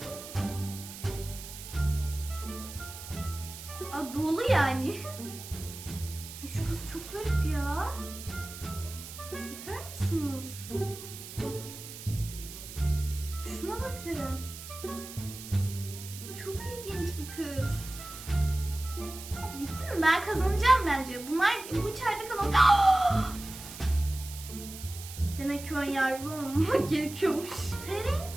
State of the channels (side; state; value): right; noise; hiss, 12 dB below the sound